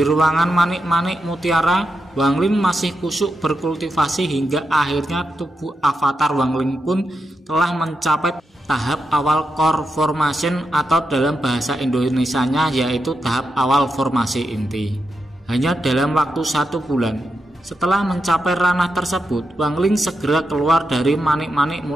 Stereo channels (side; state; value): both; normal; correlation 0.86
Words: ruangan manik-manik mutiara, Wang Lin masih kusuk berkultivasi hingga akhirnya tubuh avatar Wang Lin pun telah mencapai tahap awal core formation atau dalam bahasa Indonesianya yaitu tahap awal formasi inti. Hanya dalam waktu 1 bulan setelah mencapai ranah tersebut, Wang Lin segera keluar dari manik-manik